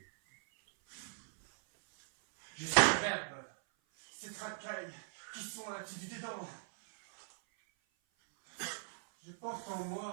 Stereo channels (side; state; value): left; silent; 52 dB below the other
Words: Je suis le verbe, ces racailles qui sont du dedans. Je porte en